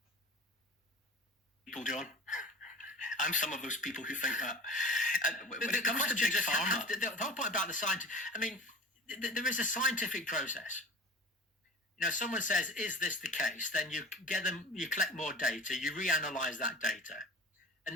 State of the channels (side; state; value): both; normal; correlation 0.38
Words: People, John. I'm some of those people who think that. The whole point about the scientific, I mean, there is a scientific process. You know, someone says, "Is this the case?" Then you collect more data, you reanalyze that data, and